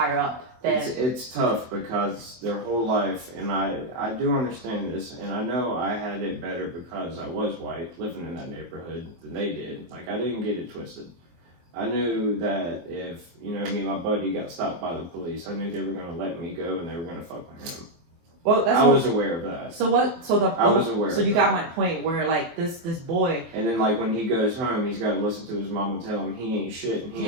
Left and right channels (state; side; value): late; left; 24 ms